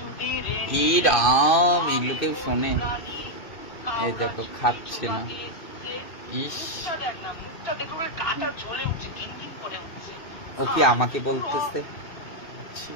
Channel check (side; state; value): right; late; 2.5 ms